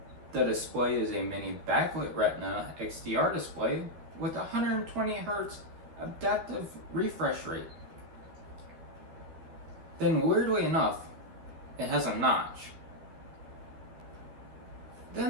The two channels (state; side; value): late; left; 12 ms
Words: The display is a mini backlit Retina XDR display with 120 Hz adaptive refresh rate. Then weirdly enough, it has a notch.